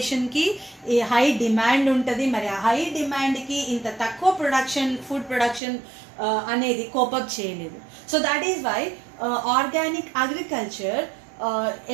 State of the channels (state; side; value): drops out; left; at 5.6 s